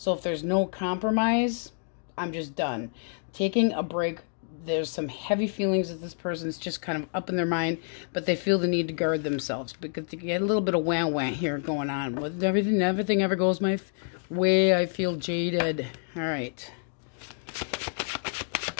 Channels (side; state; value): right; silent; digital silence